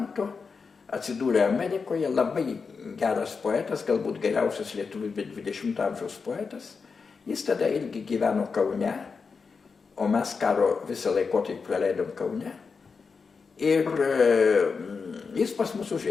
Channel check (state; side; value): quieter; right; 5.1 dB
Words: atsidūrė Amerikoje, labai geras poetas, galbūt geriausias lietuvių 20 amžiaus poetas. Jis tada irgi gyveno Kaune, o mes karo visą laikotarpį praleidom Kaune. Ir jis pas mus